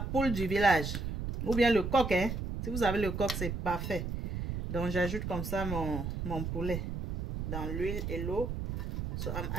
du village. Ou bien le coq, hein. Si vous avez le coq, c'est parfait. Donc j'ajoute comme ça mon poulet dans l'huile et l'eau. So I'm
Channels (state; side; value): noise; right; rumble, 4 dB below the sound